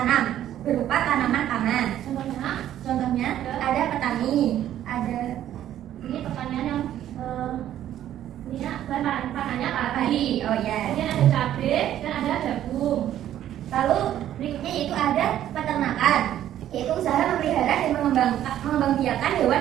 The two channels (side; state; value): left; quieter; 11.7 dB